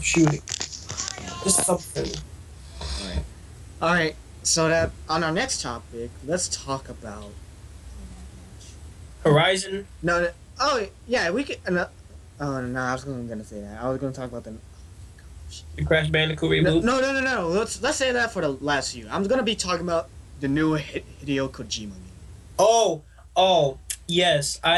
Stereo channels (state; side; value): identical; both; correlation 1.00